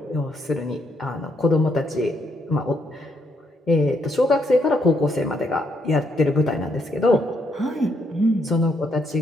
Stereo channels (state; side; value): normal; both; correlation 0.75